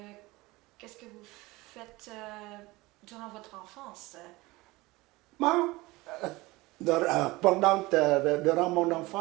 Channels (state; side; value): quieter; left; 21.1 dB